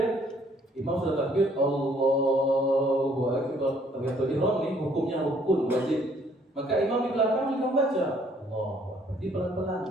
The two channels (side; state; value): both; normal; correlation 0.63